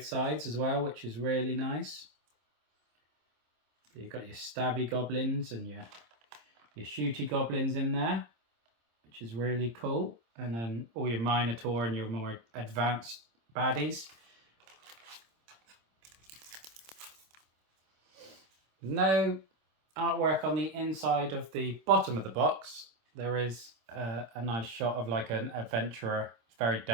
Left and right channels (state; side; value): late; left; 26 ms